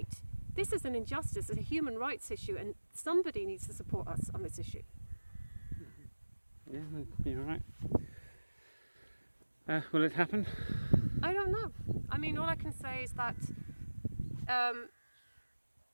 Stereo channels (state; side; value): inverted; both; correlation -1.00